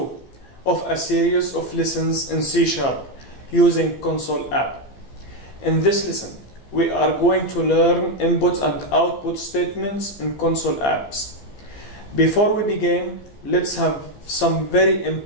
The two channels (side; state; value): right; late; 15 ms